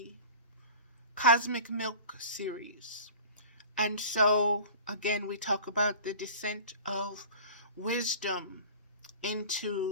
Cosmic Milk series. And so, again, we talk about the descent of wisdom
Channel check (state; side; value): inverted; both; correlation -0.40